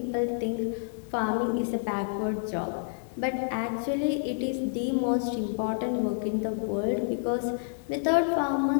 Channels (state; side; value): silent; right; digital silence